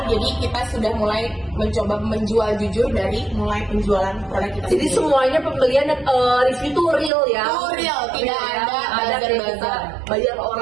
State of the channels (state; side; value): drops out; left; at 7.1 s